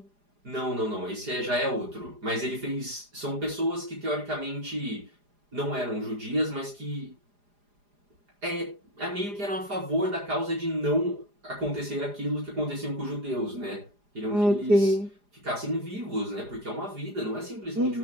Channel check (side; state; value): left; late; 4.9 ms